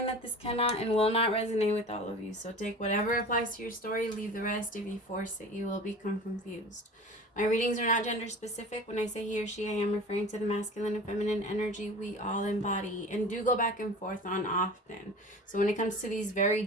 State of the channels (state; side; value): normal; both; correlation 0.38